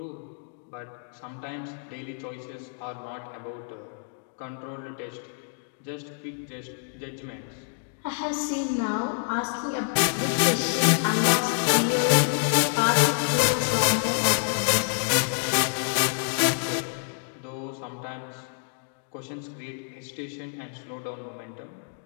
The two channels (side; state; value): right; silent; digital silence